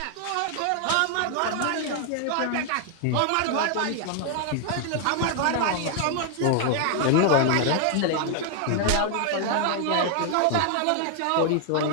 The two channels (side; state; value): both; different; correlation 0.00